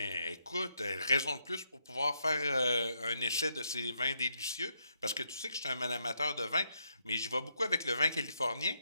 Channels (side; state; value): both; inverted; correlation -0.77